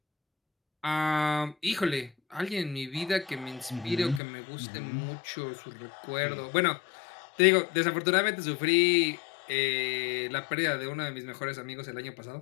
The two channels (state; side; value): drops out; right; at 4.2 s